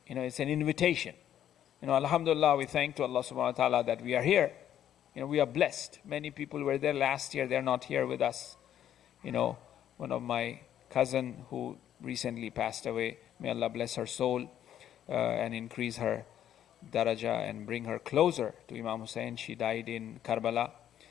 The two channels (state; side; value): quieter; right; 10.7 dB